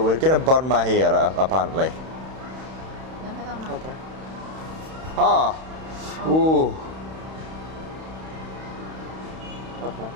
we're gonna burn my hair apparently. Okay. Ooh.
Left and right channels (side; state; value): left; late; 31 ms